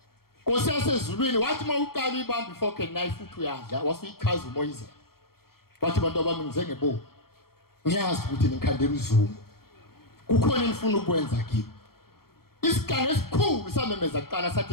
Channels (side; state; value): right; late; 0.94 ms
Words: Nkosi yasezulwini wathi mawuqala ibamba ifork and knife futhi uyadla wasuyichaza umoyizela wathi bantu abami ngize ngebo ngiyazi ukuthi nikhandela uzungu kukhona engifuna ukwenza kimi isigange esikhulu samemeza kuqala